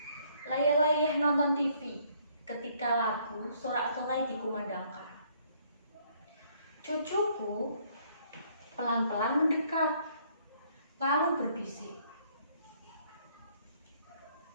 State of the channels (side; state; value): both; inverted; correlation -0.65